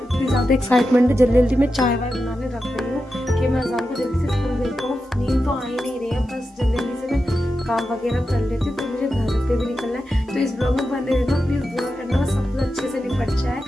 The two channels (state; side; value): normal; both; correlation 0.90